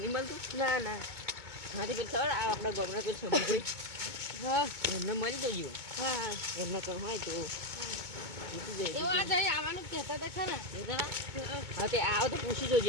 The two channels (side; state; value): left; late; 2.2 ms